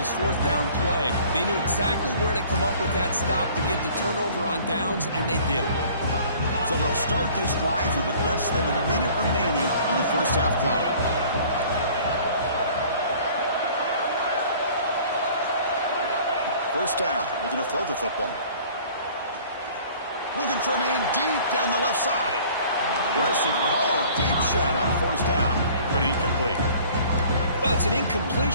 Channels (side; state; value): both; inverted; correlation -0.51